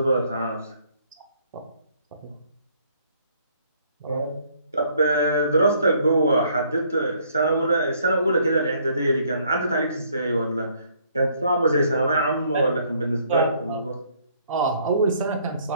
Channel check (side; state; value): both; inverted; correlation -0.65